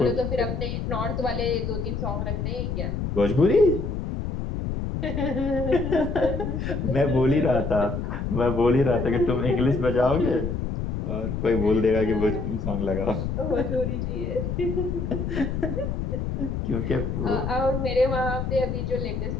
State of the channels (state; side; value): noise; left; rumble, 3 dB below the sound